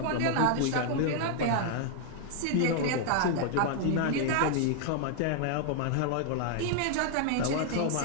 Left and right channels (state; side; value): different; both; correlation 0.00